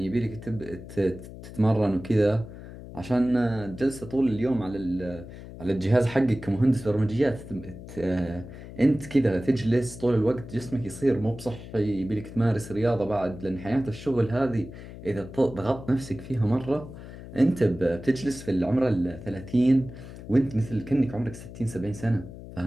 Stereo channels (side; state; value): left; noise; hum, 14 dB below the sound